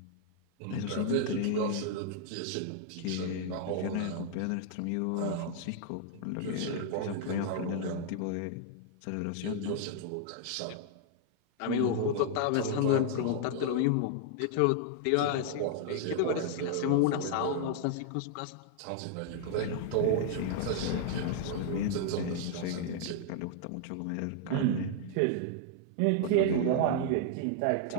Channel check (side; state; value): both; different; correlation -0.01